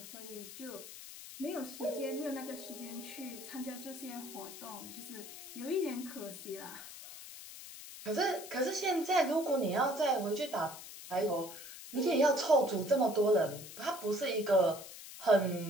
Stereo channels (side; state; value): left; noise; hiss, 13 dB below the sound